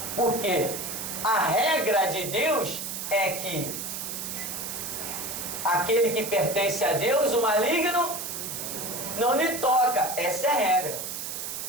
porque a regra de Deus é que aquele que pertence a Deus, o maligno, não lhe toca. Essa é a regra.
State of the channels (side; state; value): right; noise; hiss, 5 dB below the sound